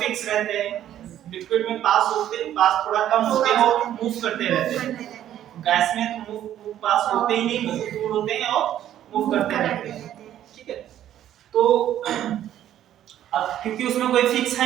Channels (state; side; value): quieter; left; 11.6 dB